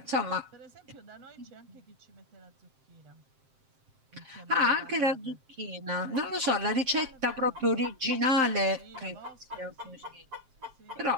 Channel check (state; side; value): late; left; 7.6 ms